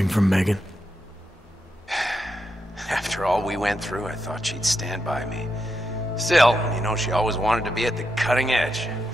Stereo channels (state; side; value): normal; both; correlation 0.85